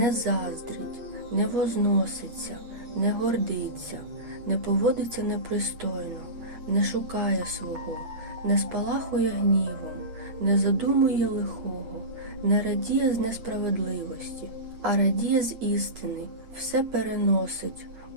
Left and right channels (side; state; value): left; late; 8.4 ms